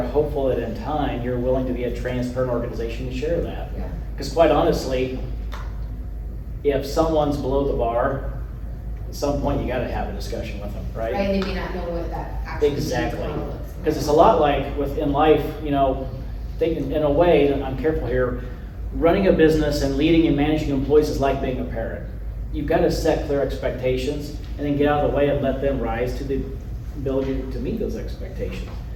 hopeful that in time, you're willing to be a transparent organization to share that. Yeah. Because quite honestly, if someone's below the bar, at some point you gotta have a discussion with them, right? Right, and they may not know what that actually means or Exactly. how it looks. Because it's a lot like in life, thinking in a way, and I'm careful here, running a business and leading and managing employees is like being a parent. You've got to set clear expectations and then get out of the way and let them rise to the ability to meet those expectations.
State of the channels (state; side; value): identical; both; correlation 1.00